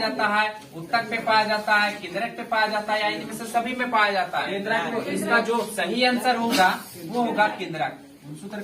है? उत्तक पे पाया जाता है, केंद्रक पे पाया जाता है, या इनमें से सभी में पाया जाता है? तो इसका जो सही आंसर होगा वो होगा केंद्रक। गुणसूत्र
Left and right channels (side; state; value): both; identical; correlation 1.00